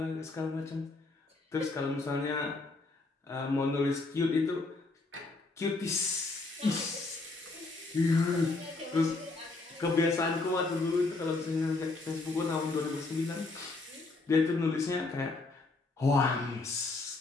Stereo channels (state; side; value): quieter; right; 3.5 dB